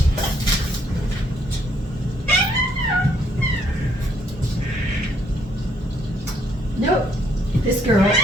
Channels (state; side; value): normal; both; correlation 0.69